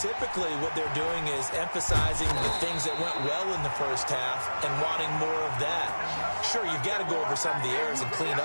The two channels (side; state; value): both; inverted; correlation -1.00